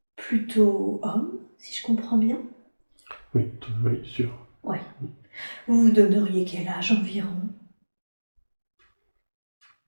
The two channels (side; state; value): both; inverted; correlation -1.00